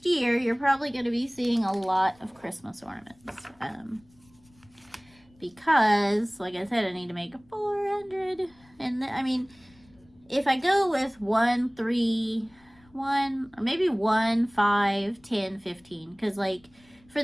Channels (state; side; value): noise; left; rumble, 30 dB below the sound